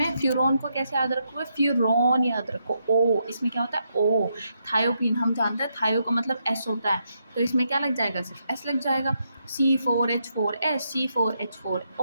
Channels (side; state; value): both; inverted; correlation -0.79